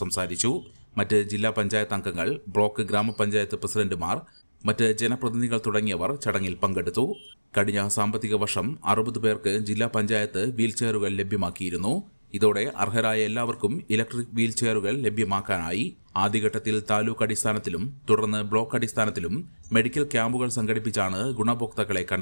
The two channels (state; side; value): inverted; both; correlation -1.00